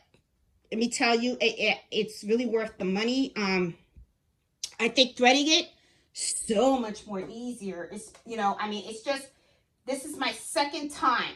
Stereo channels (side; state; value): both; identical; correlation 1.00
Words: let me tell you, it's really worth the money. I think threading it so much more easier. It's, you know, I mean, it's just, this is my second time